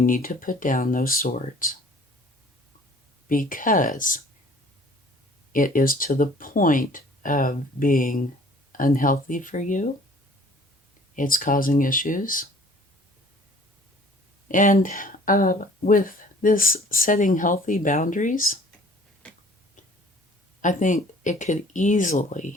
to put down those swords. Because it is to the point of being unhealthy for you. It's causing issues. And with this setting healthy boundaries, I think it could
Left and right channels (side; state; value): both; normal; correlation 0.53